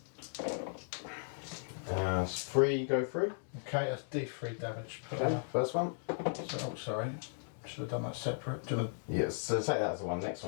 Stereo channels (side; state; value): right; silent; digital silence